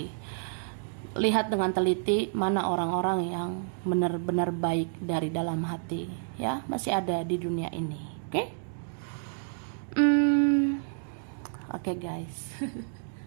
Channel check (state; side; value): silent; left; digital silence